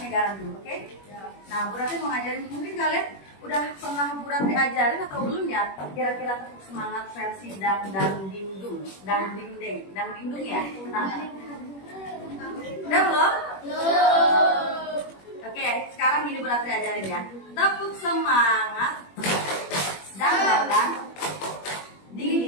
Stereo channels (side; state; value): right; late; 21 ms